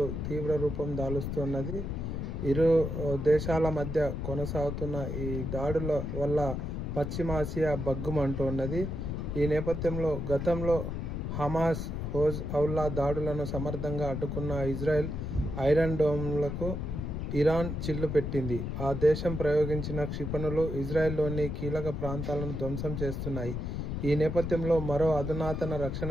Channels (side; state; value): left; noise; rumble, 3 dB below the sound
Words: తీవ్ర రూపం దాలుస్తున్నది. ఇరు దేశాల మధ్య కొనసాగుతున్న ఈ దాడుల వల్ల పశ్చిమాసియా బగ్గుమంటున్నది. ఈ నేపథ్యంలో గతంలో హమాస్, హెజ్బొల్లా దాడులను సమర్థంగా అడ్డుకున్న ఇజ్రాయెల్ ఐరన్ డోమ్లకు ఇరాన్ చిల్లు పెట్టింది. ఆ దేశం ప్రయోగించిన క్షిపణులు ఇజ్రాయెల్లోని కీలక ప్రాంతాలను ధ్వంసం చేస్తున్నాయి. ఈ నేపథ్యంలో మరో అధునాతన